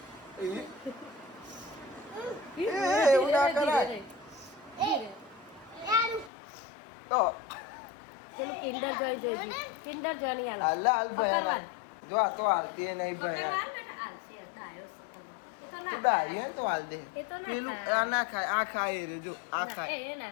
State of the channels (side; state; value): right; drops out; at 6.3 s